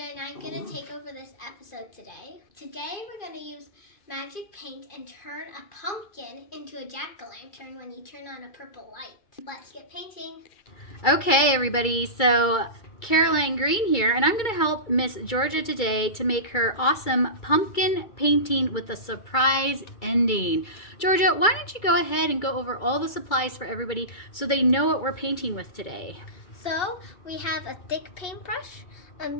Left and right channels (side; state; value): right; late; 2.3 ms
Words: and I'm going to take over this episode today. Today we're going to use magic paint and turn a pumpkin into a jack-o'-lantern when you turn on a purple light. Let's get painting. Okay, everybody, so Caroline Green here, and I'm going to help Miss Georgia today to make her awesome pumpkin painting with a surprise ending. Georgia, why don't you go ahead and go over all the supplies for everybody so they know what we're painting with today? So we have a thick paintbrush, a